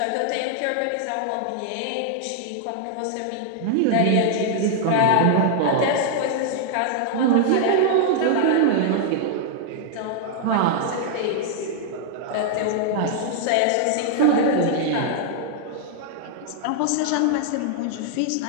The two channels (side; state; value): both; different; correlation -0.01